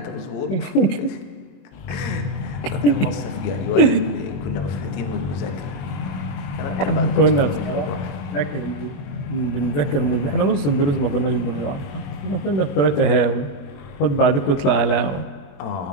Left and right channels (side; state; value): right; late; 21 ms